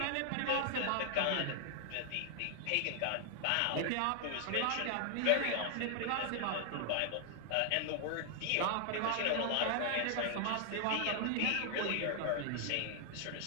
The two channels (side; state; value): both; different; correlation 0.00